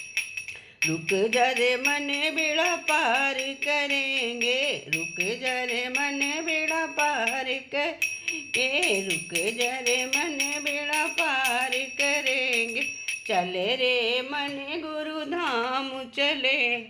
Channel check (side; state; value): both; identical; correlation 1.00